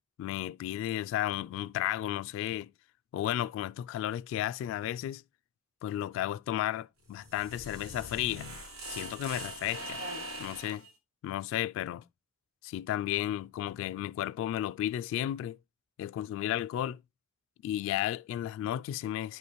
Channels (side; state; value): right; quieter; 11.0 dB